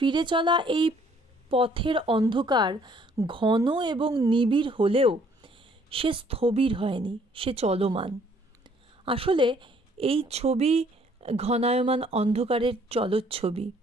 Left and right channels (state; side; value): normal; both; correlation 0.62